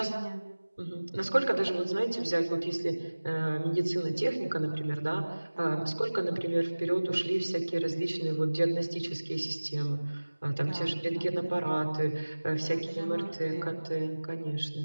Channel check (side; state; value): both; inverted; correlation -1.00